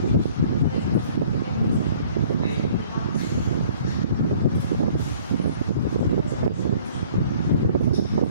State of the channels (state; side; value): inverted; both; correlation -0.55